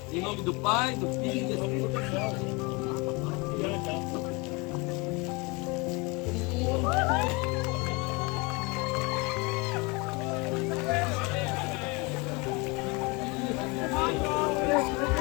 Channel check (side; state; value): right; quieter; 27.6 dB